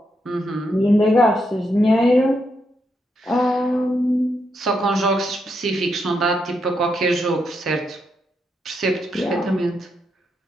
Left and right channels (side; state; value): both; normal; correlation 0.81